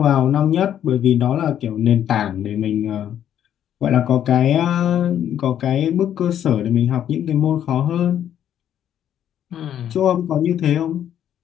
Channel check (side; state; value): right; quieter; 10.2 dB